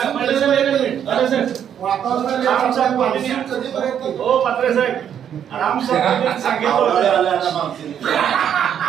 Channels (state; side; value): quieter; left; 9.1 dB